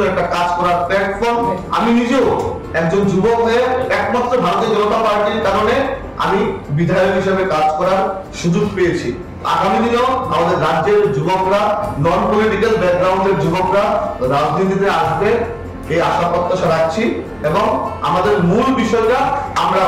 একটা কাজ করার প্ল্যাটফর্ম। আমি নিজেও একজন যুবক হয়ে একমাত্র ভারতীয় জনতা পার্টির কারণে আমি বিধায়ক হিসেবে কাজ করার সুযোগ পেয়েছি। আগামী দিনেও আমাদের রাজ্যের যুবকরা, নন পলিটিক্যাল ব্যাকগ্রাউন্ডের যুবকরা রাজনীতিতে আসবে এই আশা প্রত্যাশা রাখছি এবং আমাদের মূল বিষয়টা আমরা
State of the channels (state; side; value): identical; both; correlation 1.00